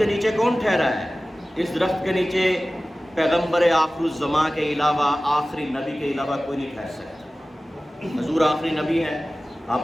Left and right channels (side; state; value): both; normal; correlation 0.97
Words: نیچے کون ٹھہرا ہے؟ اس درخت کے نیچے پیغمبر آخر الزماں کے علاوہ، آخری نبی کے علاوہ کوئی نہیں ٹھہر سکتا۔ حضور آخری نبی ہیں، آپ